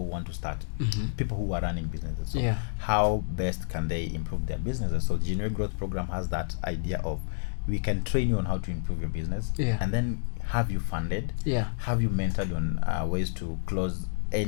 who want to start, people who are running businesses. So how best can they improve their businesses? So Genuine Growth Program has that idea of, we can train you on how to improve your business, and then have you funded, have you mentored on ways to close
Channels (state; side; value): silent; right; 58 dB below the other